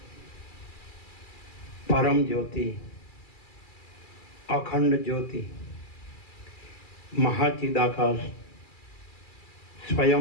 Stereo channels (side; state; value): right; late; 2.3 ms